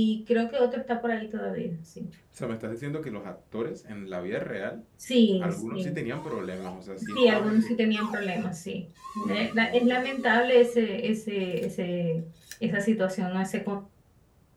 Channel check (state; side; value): identical; both; correlation 1.00